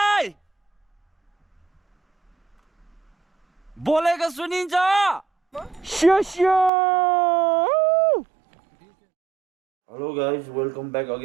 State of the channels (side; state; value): left; drops out; at 6.7 s